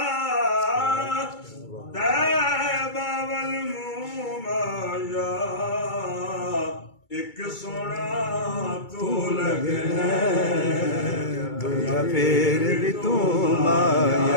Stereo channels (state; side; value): late; right; 2.3 ms